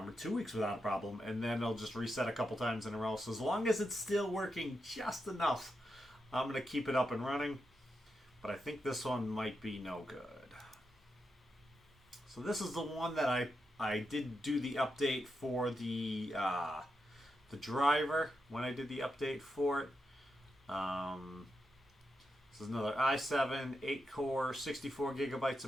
or 2 weeks without a problem, and then it'll just reset a couple times in a row. So as long as it's still working just enough, I'm going to keep it up and running. But I think this one might be no good. So this is the one that I did do the update for the driver when I did the update for it. This is another i7, 8-core, 64 gigabytes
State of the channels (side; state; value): both; normal; correlation 0.86